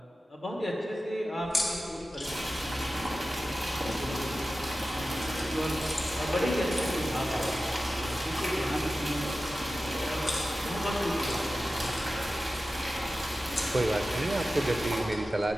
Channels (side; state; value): both; normal; correlation 0.94